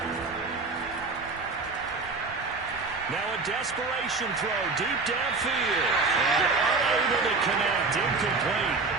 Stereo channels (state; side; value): quieter; left; 4.0 dB